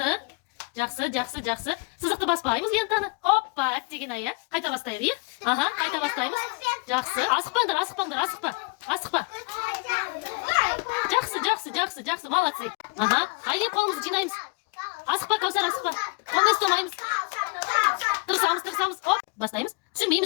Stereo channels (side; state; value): right; quieter; 30.1 dB